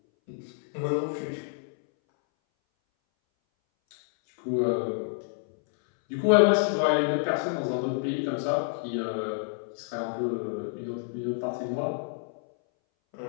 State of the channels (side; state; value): right; silent; 59 dB below the other